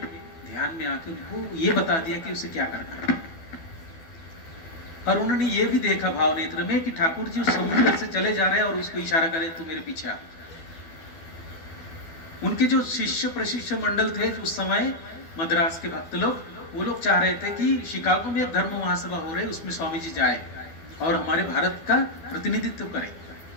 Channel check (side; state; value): right; late; 12 ms